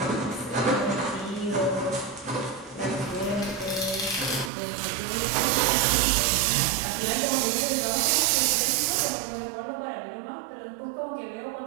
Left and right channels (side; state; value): left; drops out; at 4.5 s